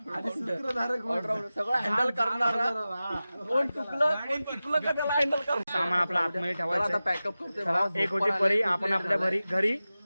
ऑलराऊंडर, सगळं हँडल करणारा. कोण चुकलं का त्याला हँडल कर. सामान आपलं आतमध्ये ठेवायचं आता आहे. पॅकअप करते. चला, एक होती परी, आपण आपल्या घरी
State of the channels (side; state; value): both; inverted; correlation -0.95